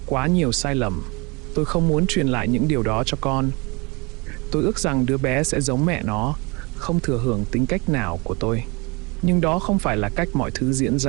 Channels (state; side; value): quieter; left; 27.9 dB